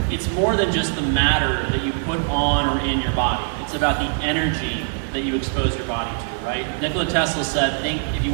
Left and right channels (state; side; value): silent; left; 64 dB below the other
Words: It's more than just the matter that you put on or in your body. It's about the energy that you expose your body to, right? Nikola Tesla said, if you